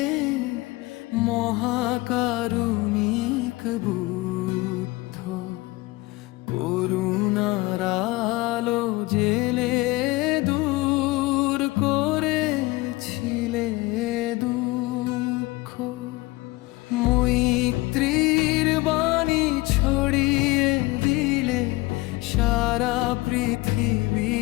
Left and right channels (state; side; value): quieter; right; 21.2 dB